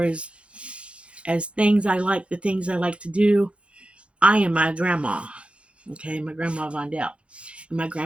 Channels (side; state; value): left; late; 0.060 ms